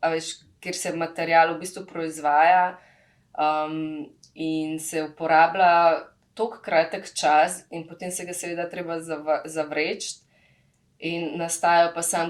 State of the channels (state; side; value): identical; both; correlation 1.00